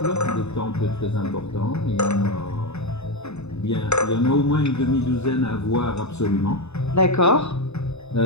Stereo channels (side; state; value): right; late; 0.80 ms